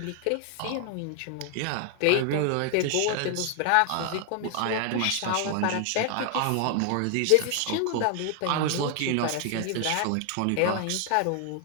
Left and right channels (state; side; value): different; both; correlation 0.00